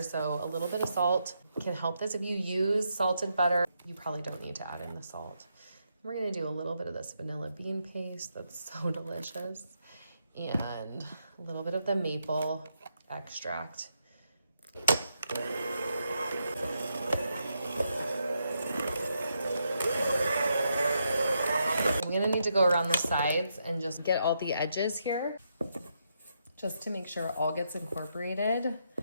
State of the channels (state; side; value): inverted; both; correlation -0.80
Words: so a little bit of salt can help this. If you use salted butter, you probably don't need to add in the salt. We're gonna do a little bit of this vanilla bean paste that's so delicious, and a little bit of the maple extract. I'm gonna need to go around the sides and just get all the edges here, just to make sure it all gets incorporated.